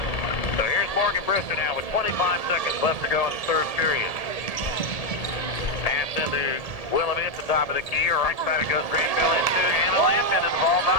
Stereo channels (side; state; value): right; late; 1.8 ms